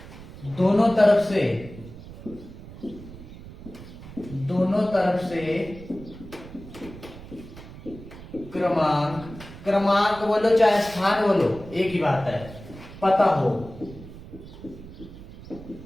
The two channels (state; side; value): noise; right; rumble, 16 dB below the sound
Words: दोनों तरफ से क्रमांक बोलो चाहे स्थान बोलो, एक ही बात है, पता हो